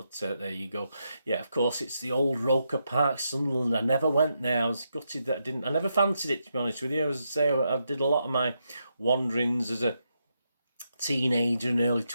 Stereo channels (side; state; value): both; inverted; correlation -0.82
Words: there you go. Yeah, of course, it's the old Roker Park, Sunderland. I never went there. I was gutted that I never fancied it, to be honest with you. As I say, I did a lot of my wanderings as a teenager and early